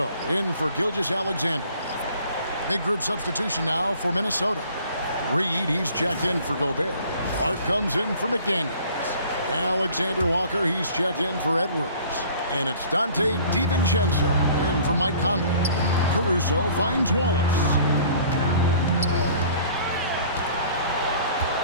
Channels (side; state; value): both; inverted; correlation -0.51